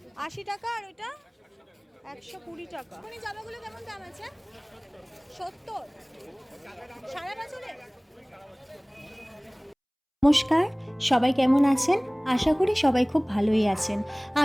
80 টাকা আর ওইটা 120 টাকা। মানে জামাগুলো কেমন দাম আছে? 70 সারা বছরে। নমস্কার, সবাই কেমন আছেন? আশা করি সবাই খুব ভালোই আছেন।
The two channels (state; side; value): identical; both; correlation 1.00